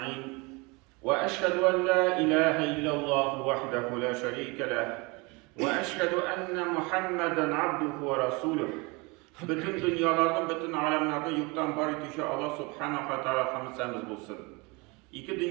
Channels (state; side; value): quieter; left; 27.2 dB